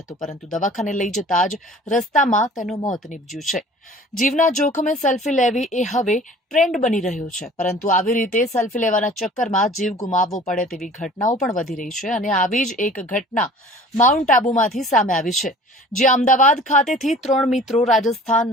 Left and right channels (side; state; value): both; normal; correlation 0.47